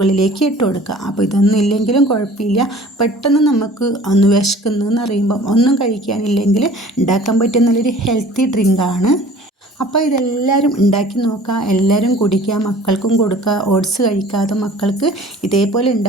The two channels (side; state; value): both; normal; correlation 0.48